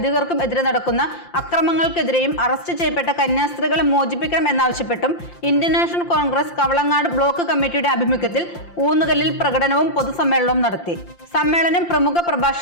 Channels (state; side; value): late; right; 5.8 ms